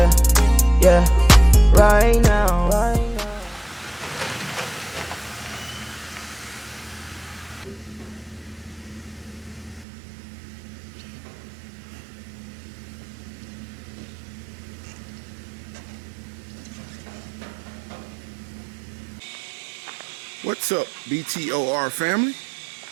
yeah, right now. What's up, BTOR family?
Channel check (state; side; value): drops out; left; at 9.9 s